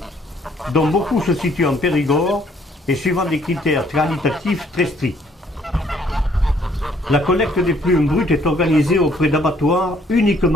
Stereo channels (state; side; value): normal; both; correlation 0.64